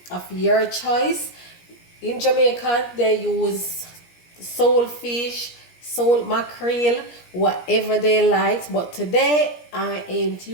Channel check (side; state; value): right; late; 17 ms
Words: of your choice. In Jamaica, they use soul fish, soul mackerel, whatever they like. But today, I ain't